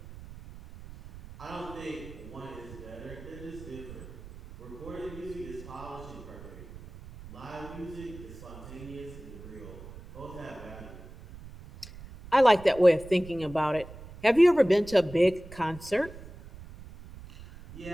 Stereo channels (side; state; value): right; noise; rumble, 16 dB below the sound